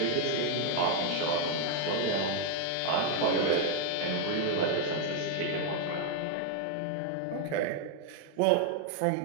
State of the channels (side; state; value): both; different; correlation 0.00